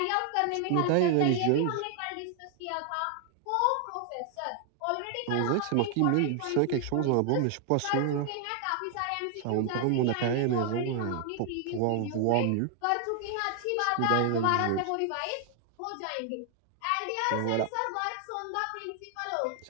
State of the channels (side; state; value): both; different; correlation 0.00